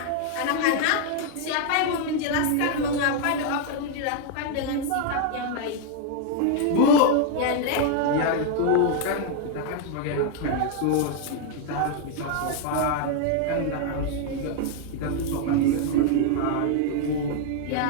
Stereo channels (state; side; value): different; both; correlation 0.00